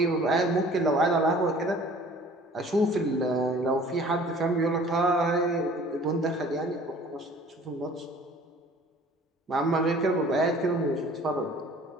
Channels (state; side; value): normal; both; correlation 0.50